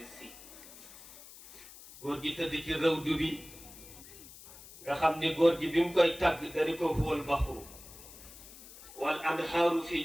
Sy góor gi tëdd ci rawdu bi nga xam ni góor gi bi mu koy tàgg dañu ko huwal baxru wal anhaaru fi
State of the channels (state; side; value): noise; left; hiss, 18 dB below the sound